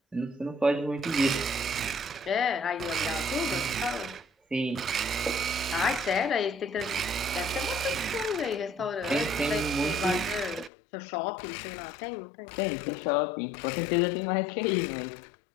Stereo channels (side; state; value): right; drops out; at 10.7 s